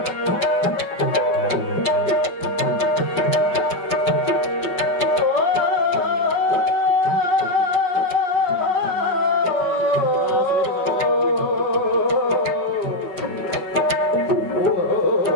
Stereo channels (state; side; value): late; right; 5.4 ms